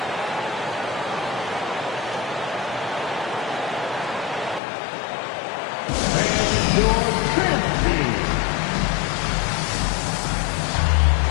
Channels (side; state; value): right; drops out; at 4.6 s